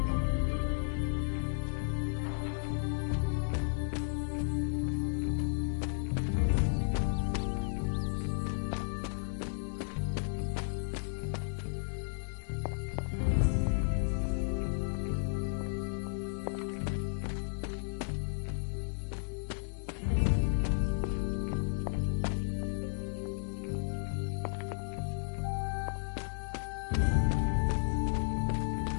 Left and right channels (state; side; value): silent; right; 55 dB below the other